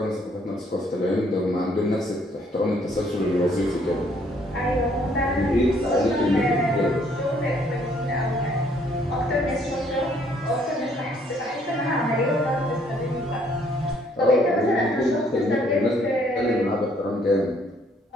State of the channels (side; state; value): both; normal; correlation 0.65